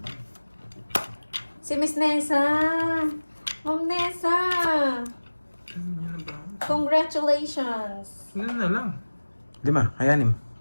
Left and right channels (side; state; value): both; inverted; correlation -1.00